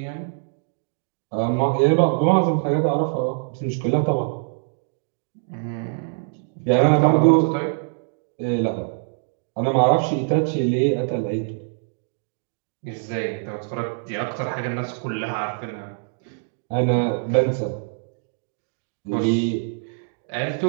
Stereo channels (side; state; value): left; silent; digital silence